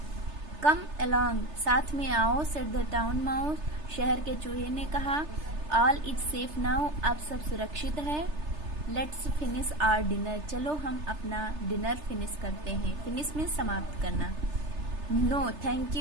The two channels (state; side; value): late; left; 3.3 ms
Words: कम अलोंग, साथ में आओ। सेड द टाउन माउस, शहर के चूहे ने कहा। ऑल इज सेफ नाउ, अब सब सुरक्षित है। लेट्स फिनिश आवर डिनर, चलो हम अपना डिनर फिनिश करते हैं। फिनिश मीन्स समाप्त करना। नो थैंक